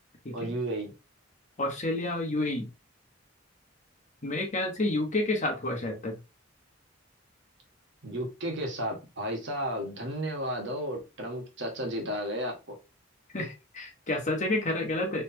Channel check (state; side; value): normal; both; correlation 0.27